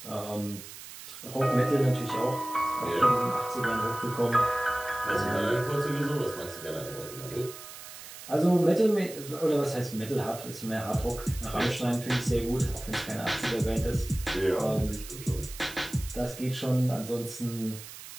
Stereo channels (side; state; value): right; noise; hiss, 14 dB below the sound